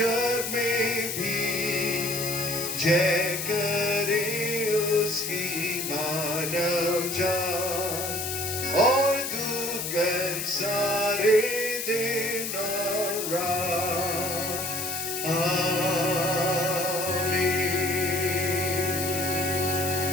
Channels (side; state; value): left; noise; hiss, 4 dB below the sound